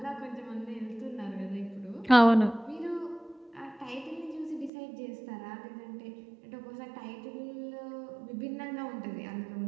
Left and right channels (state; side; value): drops out; left; at 4.7 s